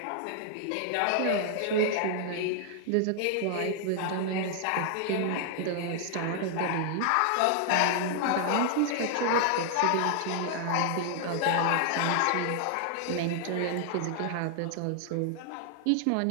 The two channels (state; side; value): different; both; correlation 0.00